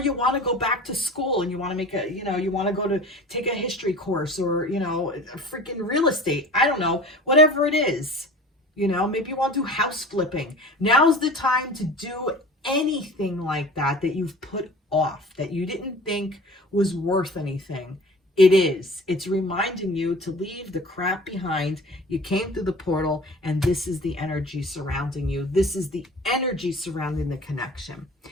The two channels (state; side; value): normal; both; correlation 0.41